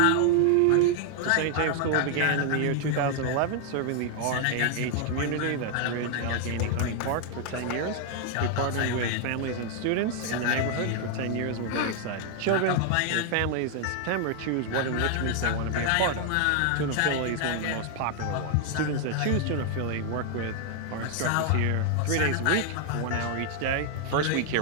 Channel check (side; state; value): both; different; correlation 0.00